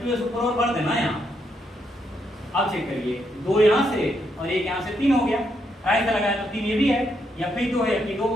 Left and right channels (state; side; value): normal; both; correlation 0.78